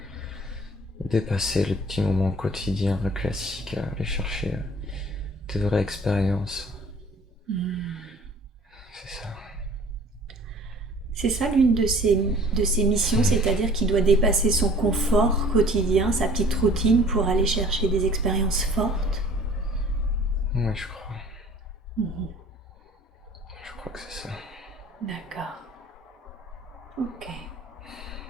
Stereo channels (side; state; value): both; normal; correlation 0.51